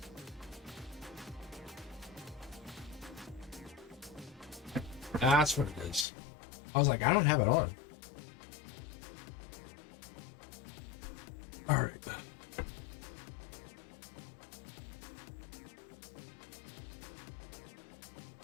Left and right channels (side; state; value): right; drops out; at 6.1 s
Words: That's what it is. I was like, I don't have it on. All right.